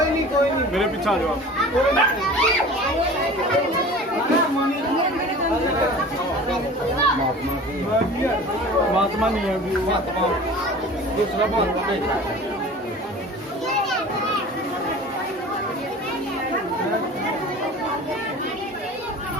नहीं मेरे पीछे आ जाओ। महात्मा नहीं है अभी, महात्मा दूसरा महात्मा नहीं।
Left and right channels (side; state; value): both; normal; correlation 0.40